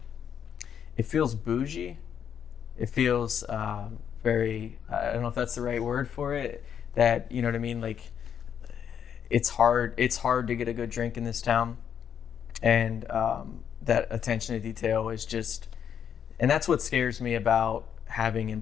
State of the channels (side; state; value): right; quieter; 8.3 dB